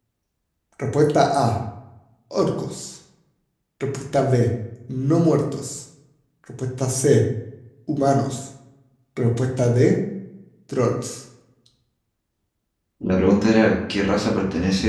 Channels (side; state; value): both; identical; correlation 1.00